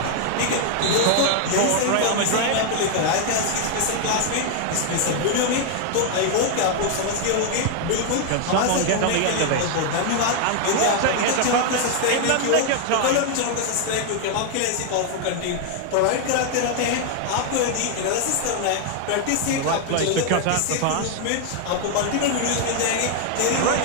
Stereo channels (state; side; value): different; both; correlation 0.00